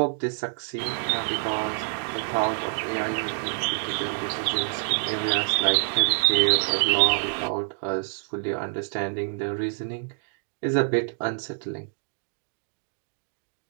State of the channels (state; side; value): silent; left; 60 dB below the other